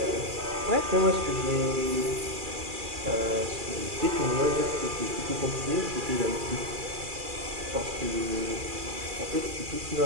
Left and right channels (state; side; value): late; left; 2.4 ms